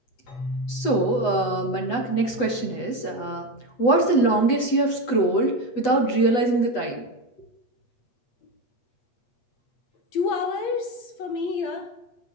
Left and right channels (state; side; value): late; right; 8.1 ms